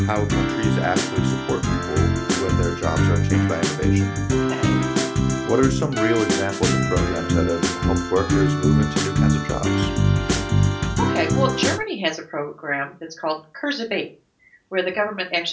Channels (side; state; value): both; identical; correlation 1.00